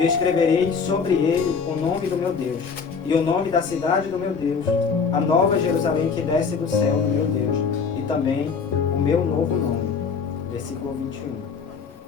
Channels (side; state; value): right; quieter; 5.6 dB